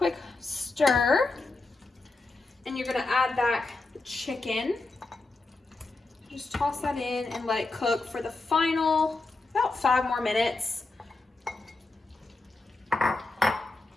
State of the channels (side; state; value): right; quieter; 3.3 dB